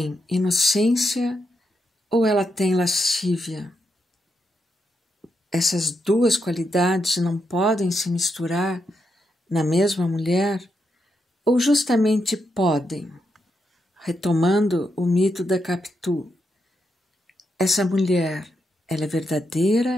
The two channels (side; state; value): both; normal; correlation 0.83